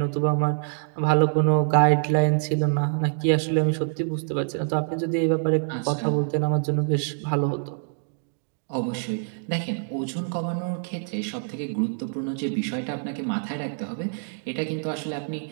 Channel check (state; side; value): silent; left; digital silence